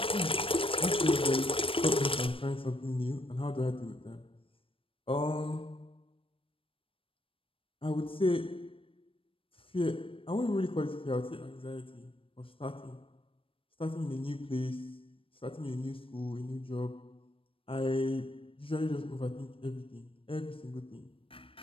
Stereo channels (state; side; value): late; right; 0.26 ms